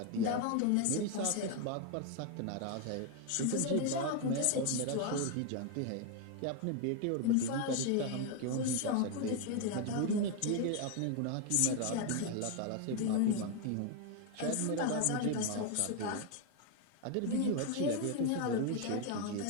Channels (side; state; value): both; different; correlation 0.01